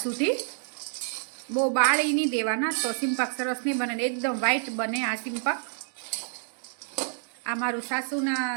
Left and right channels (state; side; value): silent; left; 59 dB below the other